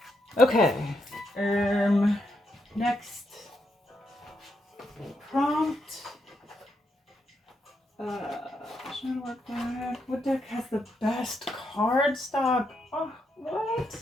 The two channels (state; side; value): normal; both; correlation 0.80